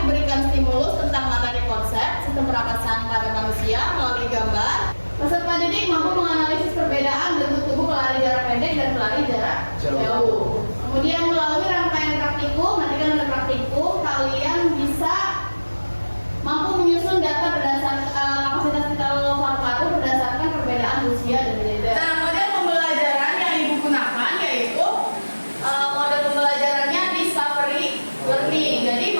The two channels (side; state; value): both; inverted; correlation -1.00